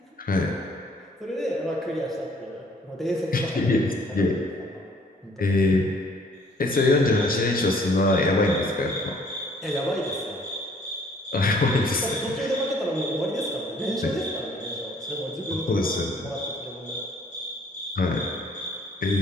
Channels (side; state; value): both; normal; correlation 0.59